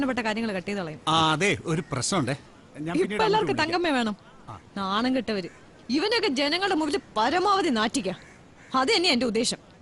കാര്യങ്ങൾ കട്ട് ചെയ്ത് കളയും. അതെ, ഒരു പ്രശ്നമുണ്ടേ. ഇപ്പൊ എല്ലാവർക്കും തങ്കമ്മ വേണം. നാണം കെട്ടവര്. ഇവനൊക്കെ ജനങ്ങളുടെ മുമ്പിൽ പരമാവധി നാറ്റിക്ക. അത് തന്നെ എന്റെ ഉദ്ദേശം.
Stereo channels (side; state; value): both; identical; correlation 1.00